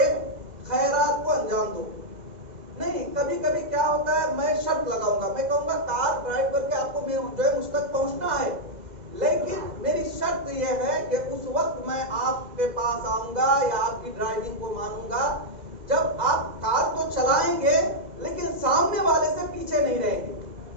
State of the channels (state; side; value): late; left; 2.0 ms